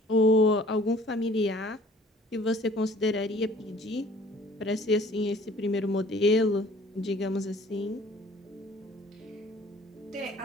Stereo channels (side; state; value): both; normal; correlation 0.53